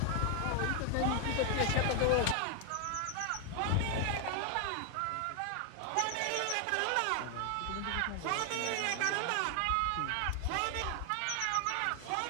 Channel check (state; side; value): different; both; correlation 0.00